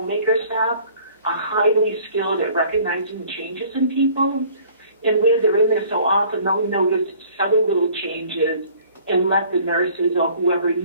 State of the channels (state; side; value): inverted; both; correlation -0.53